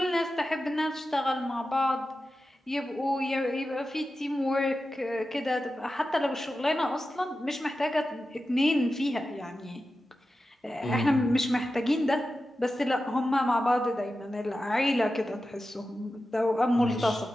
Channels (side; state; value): both; normal; correlation 0.92